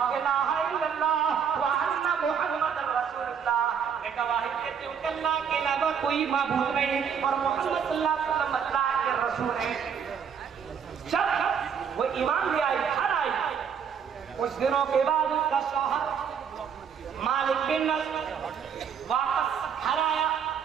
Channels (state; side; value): quieter; left; 7.3 dB